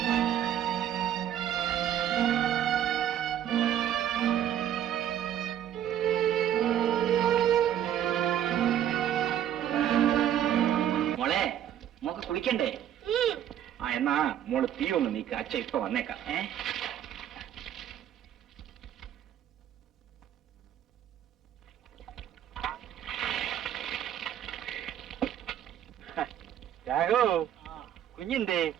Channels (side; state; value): left; quieter; 10.6 dB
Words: മോളെ, മോക്ക് കുളിക്കണ്ടേ? എന്നാ മോള് തീ ഒന്ന് നീക്ക. അച്ഛ ഇപ്പൊ വന്നേക്കാം. രാഘു, കുഞ്ഞിന്തേ?